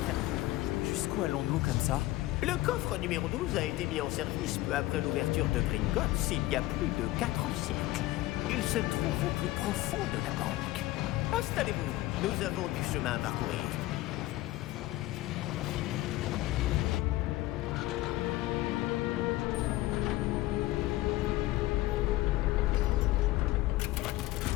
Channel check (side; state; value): right; quieter; 17.5 dB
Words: Jusqu'où allons-nous comme ça? Le coffre numéro 12 a été mis en service peu après l'ouverture de Gringotts il y a plus de 4 siècles. Il se trouve au plus profond de la banque. Installez-vous, nous avons du chemin à parcourir.